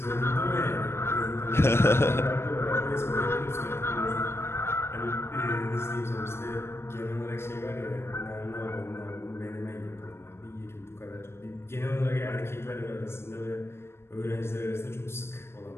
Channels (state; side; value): late; right; 0.12 ms